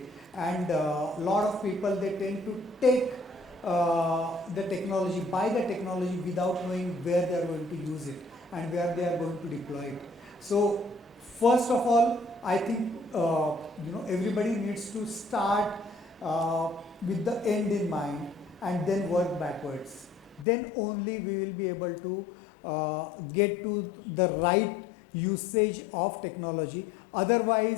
and a lot of people, they tend to take the technology, buy the technology without knowing where they are going to use it and where they are going to deploy it. So first of all, I think everybody needs to start uh, with the end in mind and then work backwards. Then only we will be able to get to the right usage of technology.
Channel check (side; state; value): right; drops out; at 20.5 s